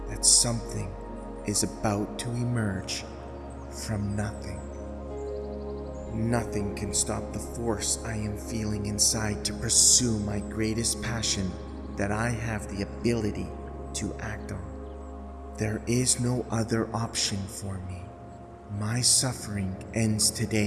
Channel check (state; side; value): identical; both; correlation 1.00